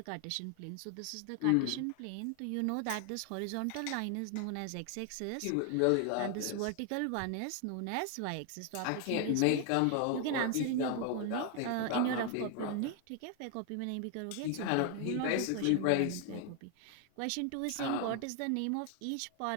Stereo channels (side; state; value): both; different; correlation 0.00